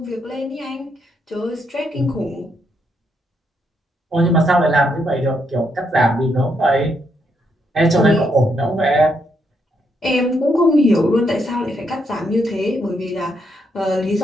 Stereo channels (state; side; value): normal; both; correlation 0.77